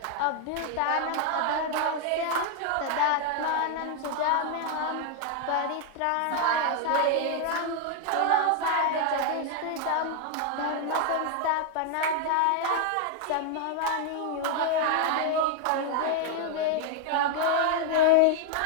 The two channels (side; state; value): both; different; correlation 0.00